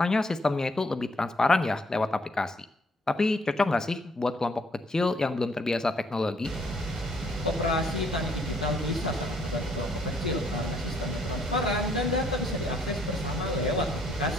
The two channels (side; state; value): both; normal; correlation 0.67